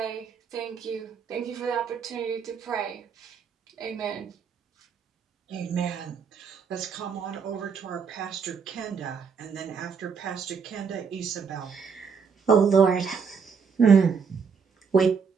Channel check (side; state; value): left; quieter; 6.0 dB